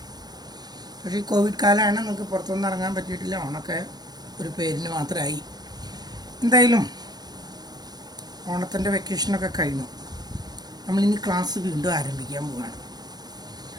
പക്ഷേ ഈ കോവിഡ് കാലമാണ്, നമുക്ക് പുറത്തൊന്നും ഇറങ്ങാൻ പറ്റിയിട്ടില്ല. ഓണമൊക്കെ ഒരു പേരിന് മാത്രമായി. എന്തായാലും ഓണത്തിൻ്റെ വെക്കേഷനൊക്കെ കഴിഞ്ഞു. നമ്മളിനി ക്ലാസ് വീണ്ടും ആരംഭിക്കാൻ പോവുകയാണ്.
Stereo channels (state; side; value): late; left; 0.19 ms